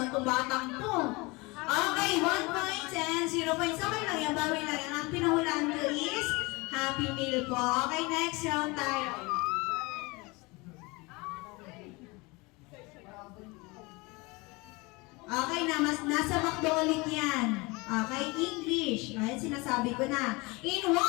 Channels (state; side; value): quieter; right; 25.3 dB